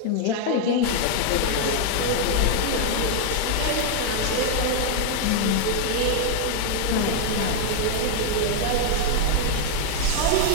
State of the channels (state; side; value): different; both; correlation 0.00